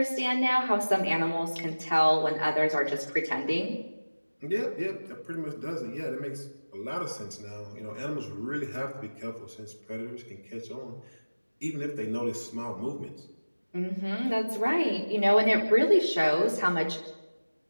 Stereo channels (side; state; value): both; inverted; correlation -1.00